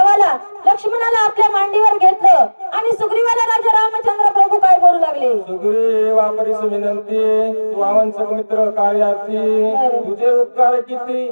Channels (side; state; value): both; inverted; correlation -1.00